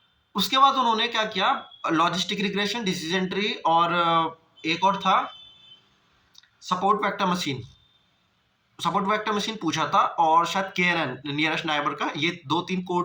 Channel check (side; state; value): both; identical; correlation 1.00